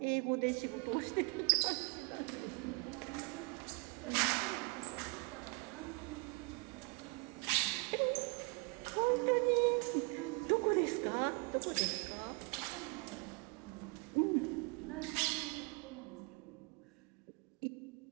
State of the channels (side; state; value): left; quieter; 31.7 dB